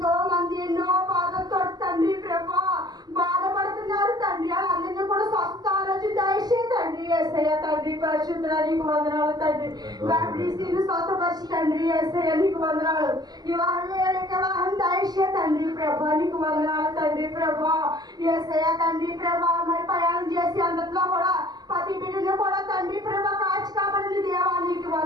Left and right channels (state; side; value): late; left; 0.20 ms